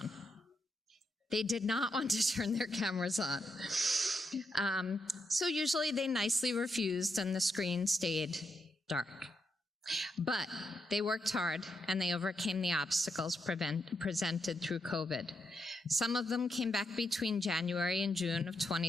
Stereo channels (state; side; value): normal; both; correlation 0.82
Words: They did not want to turn their cameras on. So usually they nicely refused and the screen stayed dark. But they worked hard and they overcame the obstacles presented through COVID. Some of them came back between January and June of